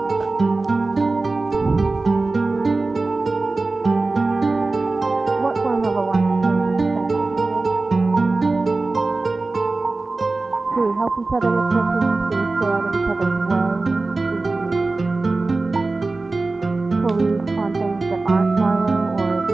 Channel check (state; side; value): quieter; left; 3.4 dB